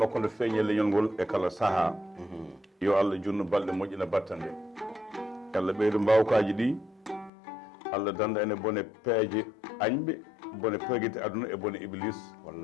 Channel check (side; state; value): right; drops out; at 7.3 s